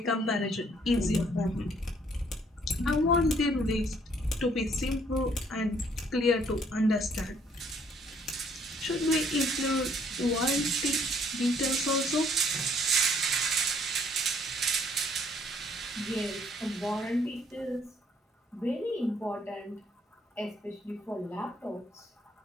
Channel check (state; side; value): normal; both; correlation 0.64